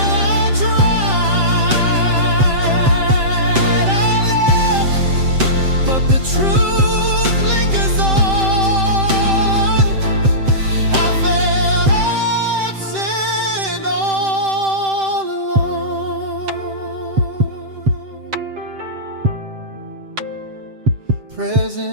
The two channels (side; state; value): left; late; 7.7 ms